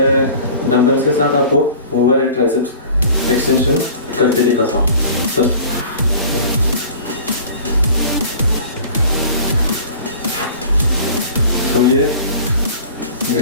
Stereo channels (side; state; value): both; inverted; correlation -0.43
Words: डंबल्स के साथ आपको ओवरहेड ट्राइसेप्स एक्सटेंशन करके दिखाता हूँ। तो ये